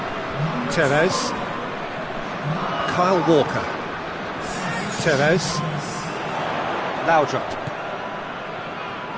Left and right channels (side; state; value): both; identical; correlation 1.00